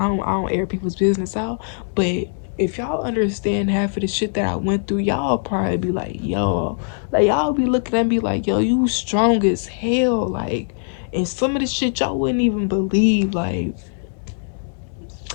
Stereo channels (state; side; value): silent; right; digital silence